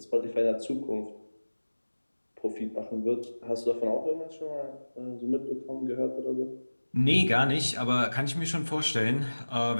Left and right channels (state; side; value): inverted; both; correlation -1.00